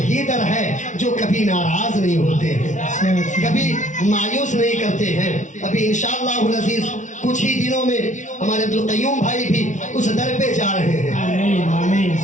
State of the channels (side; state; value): right; late; 0.36 ms